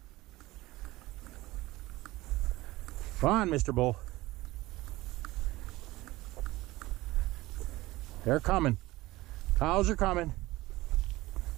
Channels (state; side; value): quieter; left; 18.9 dB